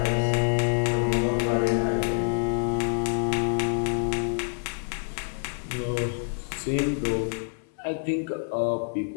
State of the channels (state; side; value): silent; right; 60 dB below the other